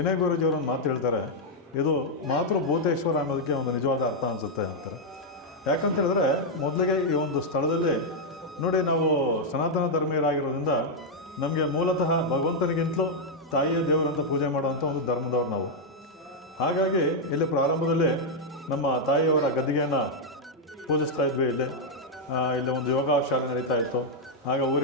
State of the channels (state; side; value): normal; both; correlation -0.02